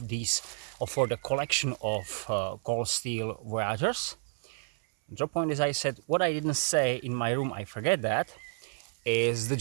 these, for the collection of Cold Steel Voyagers. Drop point, as I said, what I didn't say in my room, I forget that, is the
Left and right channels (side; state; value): left; silent; 58 dB below the other